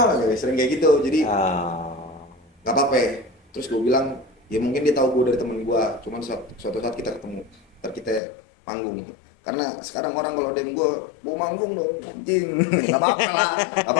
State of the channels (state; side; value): drops out; right; at 8.2 s